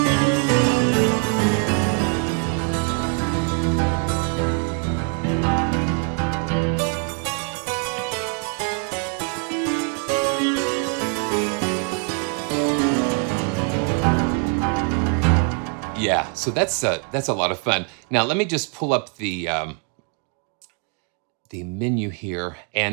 Yeah, so that's a lot of fun. Now let me just pull up the menu here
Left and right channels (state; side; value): quieter; left; 39.5 dB